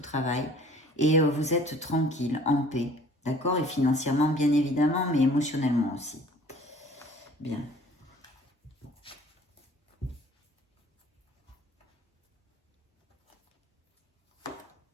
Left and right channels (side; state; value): both; normal; correlation 0.51